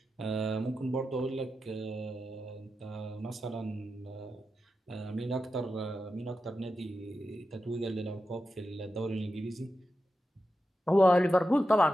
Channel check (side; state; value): both; normal; correlation 0.90